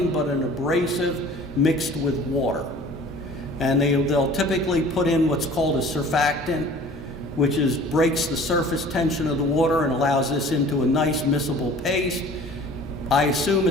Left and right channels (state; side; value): normal; both; correlation 0.47